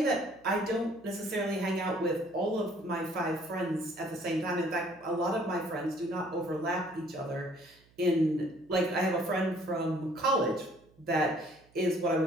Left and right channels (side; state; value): right; noise; hum, 30 dB below the sound